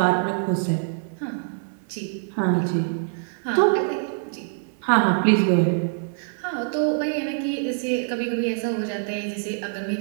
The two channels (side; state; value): left; silent; 61 dB below the other